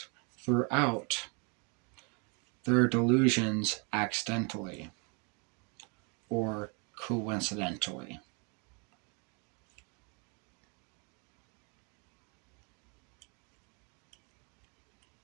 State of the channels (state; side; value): quieter; left; 34.5 dB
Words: throughout their delusions accidentally or coincidentally.